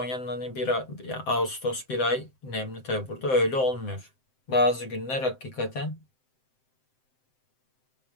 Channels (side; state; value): right; late; 7.7 ms